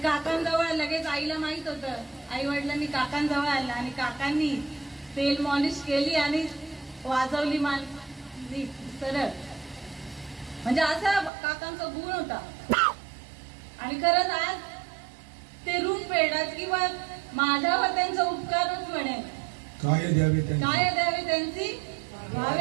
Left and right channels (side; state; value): left; drops out; at 11.3 s